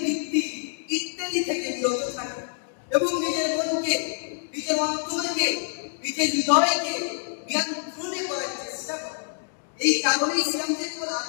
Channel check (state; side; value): silent; right; digital silence